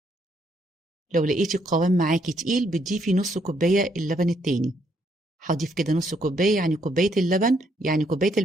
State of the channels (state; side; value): normal; both; correlation 0.72